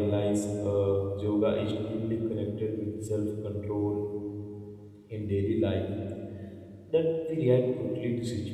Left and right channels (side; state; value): both; identical; correlation 1.00